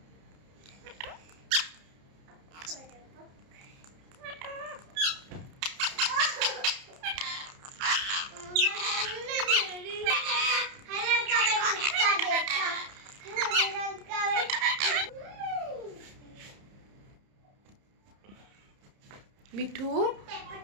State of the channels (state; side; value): late; left; 30 ms